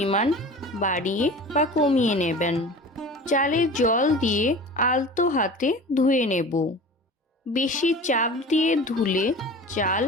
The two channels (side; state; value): both; normal; correlation 0.38